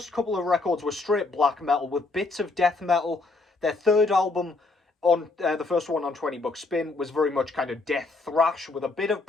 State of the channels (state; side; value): quieter; right; 3.5 dB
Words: couple of records were straight black metal with bits of death metal. Their 3rd album, on the first one on 20 Buck Spin, was very much kind of death thrash with a bit of